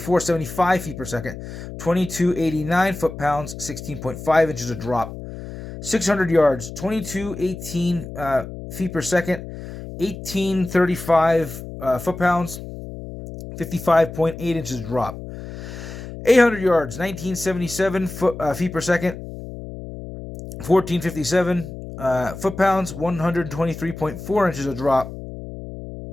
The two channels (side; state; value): left; noise; hum, 11 dB below the sound